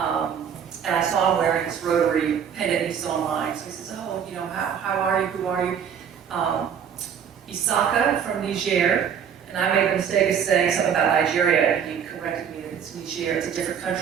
And I saw him wearing this Rotary pendant he saw mine. So he says, oh, how are you? Who are you? Isaka from Niger, and I made the mistake of saying something about Nigeria, and he corrected me that it's Niger, it's a different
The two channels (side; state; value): left; quieter; 7.9 dB